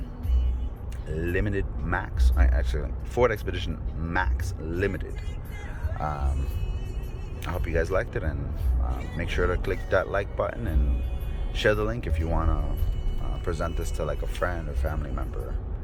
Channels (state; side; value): identical; both; correlation 1.00